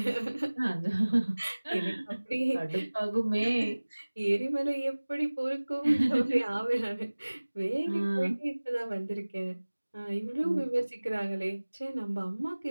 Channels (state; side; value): inverted; both; correlation -1.00